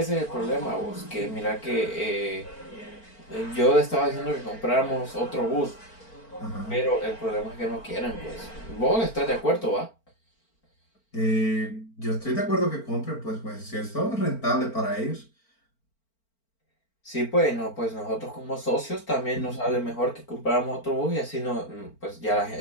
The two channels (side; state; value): right; late; 4.4 ms